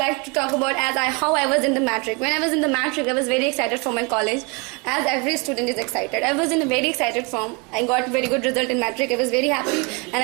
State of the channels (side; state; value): left; quieter; 30.2 dB